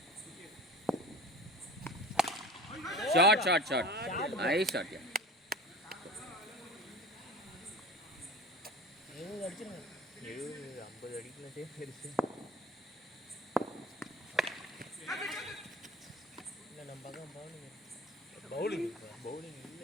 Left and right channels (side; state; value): both; normal; correlation 0.38